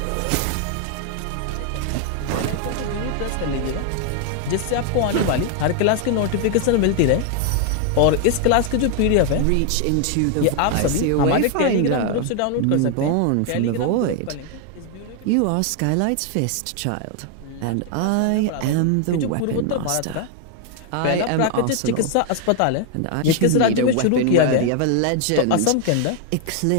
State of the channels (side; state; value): both; different; correlation 0.00